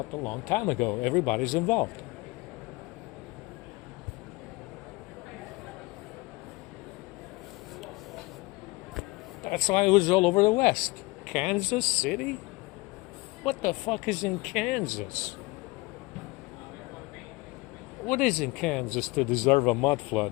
a long time ago. Everybody's involved. That's why it was all over the West. Kansas City? What the fuck is in Kansas? What is in Kansas to deserve a mud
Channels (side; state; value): right; quieter; 23.6 dB